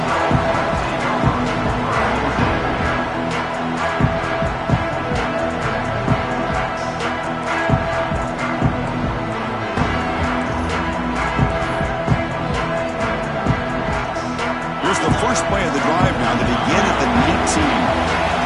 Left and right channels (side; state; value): both; identical; correlation 1.00